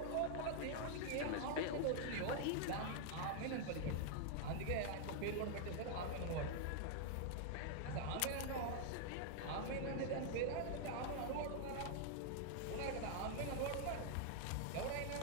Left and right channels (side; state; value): both; different; correlation 0.00